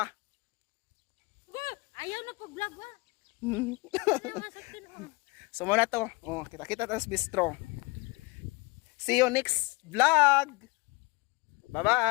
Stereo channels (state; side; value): quieter; right; 25.8 dB